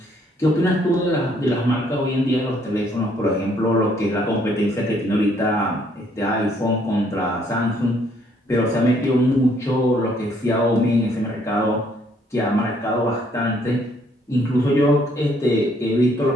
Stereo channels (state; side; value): normal; both; correlation 0.66